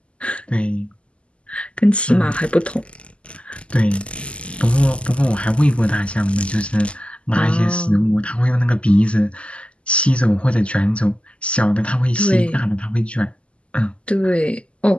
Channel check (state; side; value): late; right; 0.056 ms